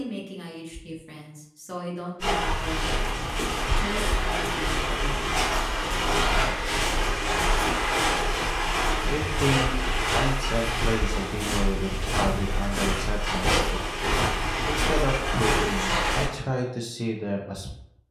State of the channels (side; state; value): both; identical; correlation 1.00